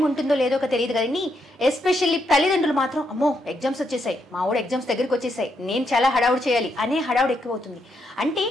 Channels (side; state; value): both; normal; correlation 0.79